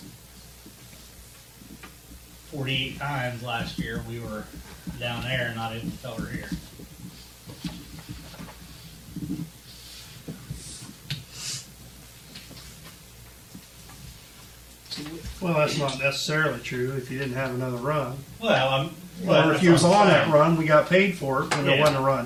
48 times last year, we were down there and not able to cover here. Well, that's not necessarily true if you didn't have another run. Well, Or if you was on that run, we got paid for it, and there Yeah. wasn't a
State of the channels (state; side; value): identical; both; correlation 1.00